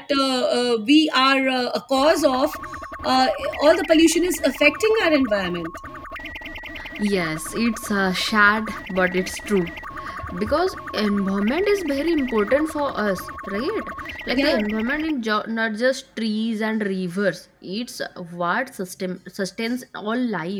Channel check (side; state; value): both; identical; correlation 1.00